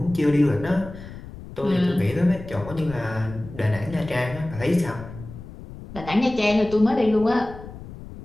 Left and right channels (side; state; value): left; noise; rumble, 14 dB below the sound